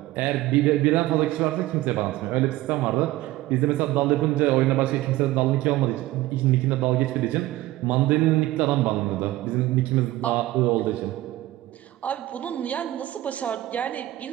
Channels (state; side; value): quieter; left; 16.6 dB